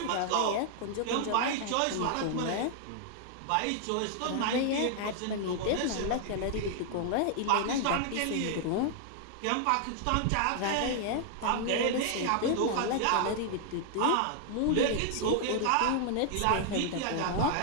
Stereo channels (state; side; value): different; both; correlation 0.00